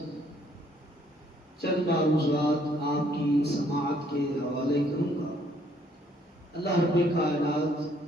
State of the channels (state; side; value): normal; both; correlation 0.65